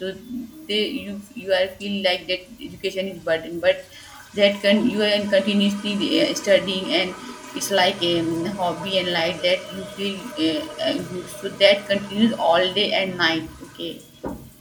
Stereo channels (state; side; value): identical; both; correlation 1.00